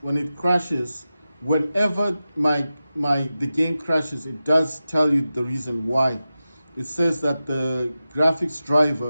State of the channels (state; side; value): inverted; both; correlation -0.94